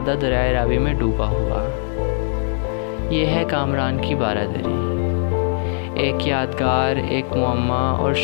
दरियाए रावी में डूबा हुआ। ये है कामरान की बारादरी, एक यादगार, एक मुअम्मा और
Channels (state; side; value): silent; right; digital silence